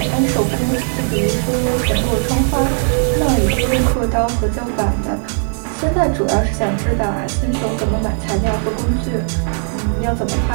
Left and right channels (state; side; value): silent; left; 56 dB below the other